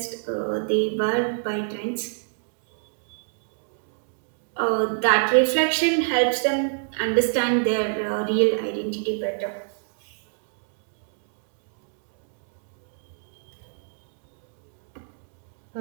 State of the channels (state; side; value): silent; left; digital silence